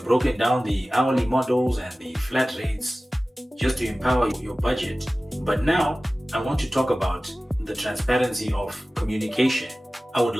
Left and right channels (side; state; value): both; normal; correlation 0.97